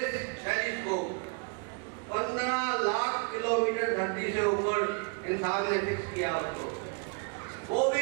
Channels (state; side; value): quieter; left; 35.0 dB